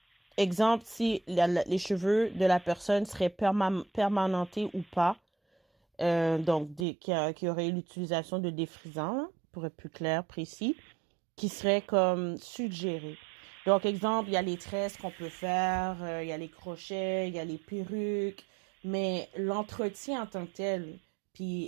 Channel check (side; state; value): left; drops out; at 6.9 s